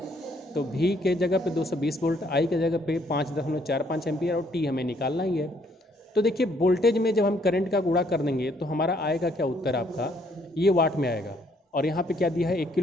तो V के जगह पे 220 वोल्ट, I के जगह पे 5.45 एम्पियर, और T हमें निकालना ही है। तो देखिए वोल्टेज में जब हम करंट का गुणा कर देंगे तो हमारा आएगा क्या उत्तर आपका, ये वाट में आएगा। और यहाँ पे क्या दिया है 1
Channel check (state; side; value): normal; both; correlation 0.67